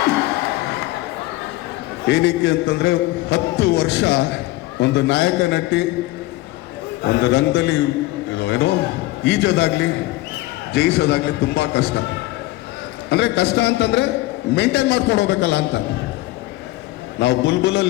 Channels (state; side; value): quieter; right; 18.4 dB